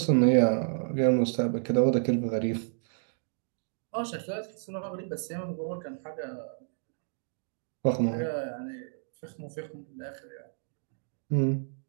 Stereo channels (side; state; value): left; silent; digital silence